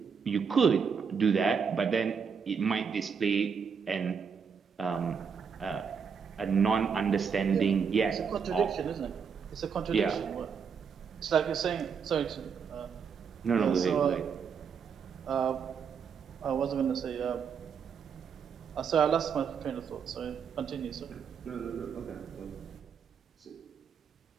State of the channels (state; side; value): quieter; left; 6.4 dB